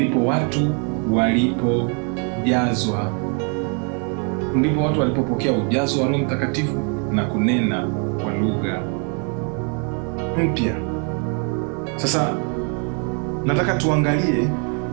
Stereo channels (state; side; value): quieter; left; 38.9 dB